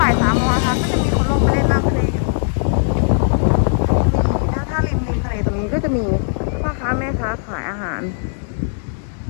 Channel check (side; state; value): right; silent; digital silence